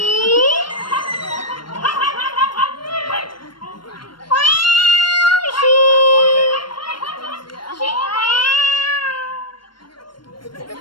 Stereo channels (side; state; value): right; late; 0.72 ms